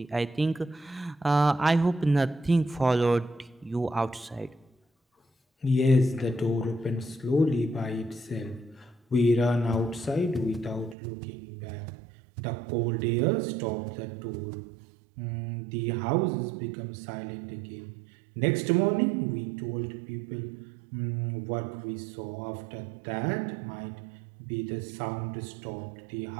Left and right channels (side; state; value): left; drops out; at 11.0 s